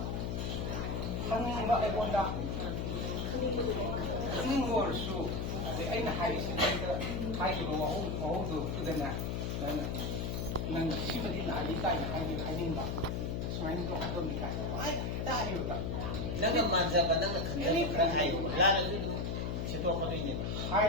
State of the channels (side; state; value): left; noise; hum, 1 dB below the sound